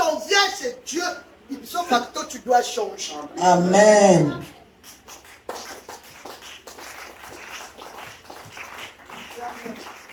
on vient chez Dieu, ipso facto, tu dois changer. Amen.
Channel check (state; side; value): identical; both; correlation 1.00